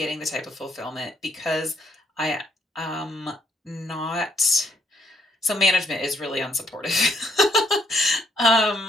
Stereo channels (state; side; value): normal; both; correlation 0.69